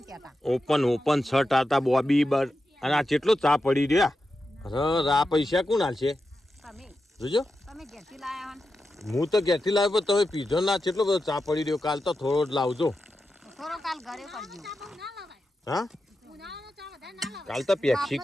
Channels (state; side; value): normal; both; correlation 0.90